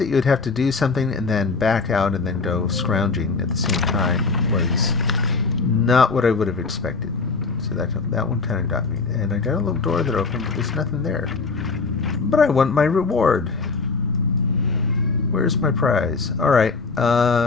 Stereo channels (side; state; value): right; quieter; 4.3 dB